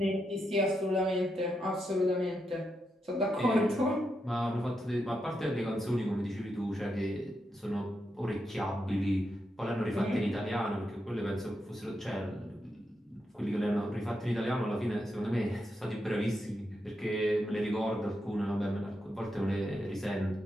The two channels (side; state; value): both; normal; correlation 0.84